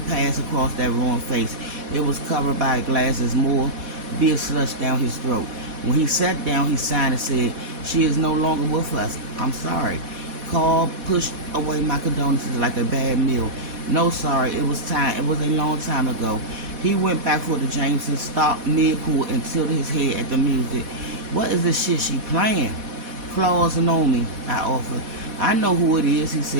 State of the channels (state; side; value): late; left; 4.1 ms